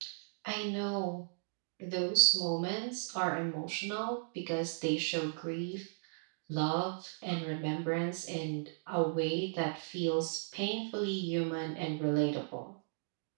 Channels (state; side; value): silent; left; digital silence